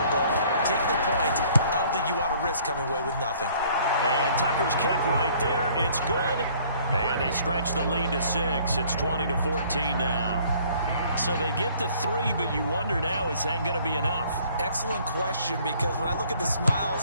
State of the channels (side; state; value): both; inverted; correlation -0.57